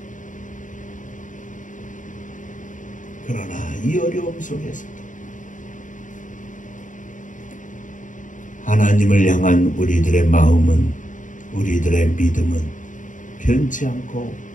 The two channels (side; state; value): right; late; 0.37 ms